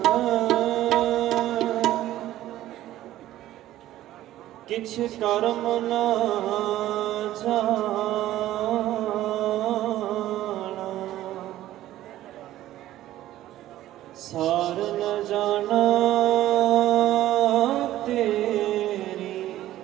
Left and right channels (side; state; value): left; quieter; 14.1 dB